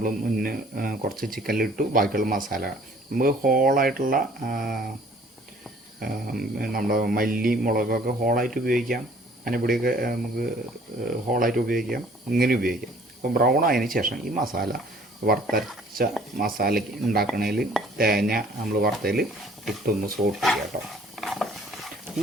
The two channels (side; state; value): both; normal; correlation 0.56